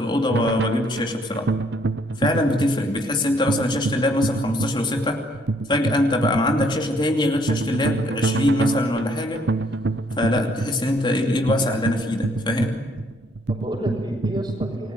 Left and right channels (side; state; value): both; normal; correlation 0.67